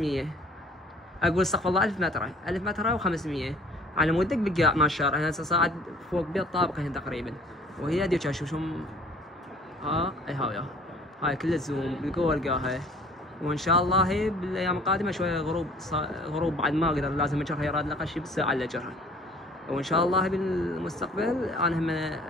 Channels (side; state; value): both; normal; correlation 0.53